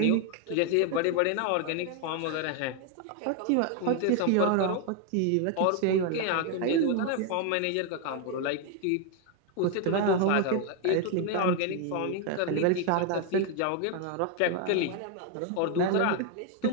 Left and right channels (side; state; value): both; different; correlation 0.01